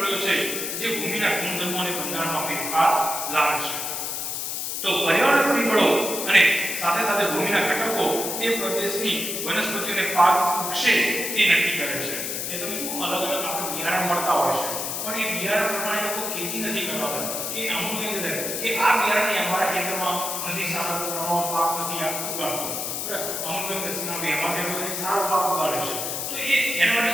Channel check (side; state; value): left; noise; hiss, 3 dB below the sound